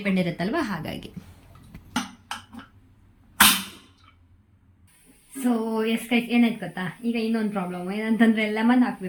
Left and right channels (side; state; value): both; identical; correlation 1.00